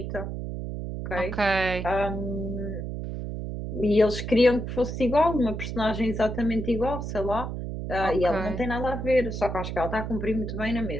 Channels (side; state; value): right; noise; hum, 5 dB below the sound